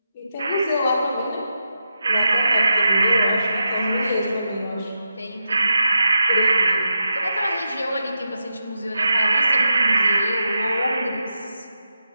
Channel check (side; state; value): both; inverted; correlation -0.87